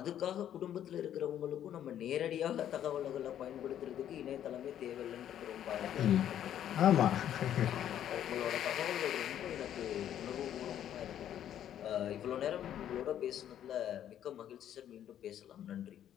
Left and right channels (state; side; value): quieter; right; 10.6 dB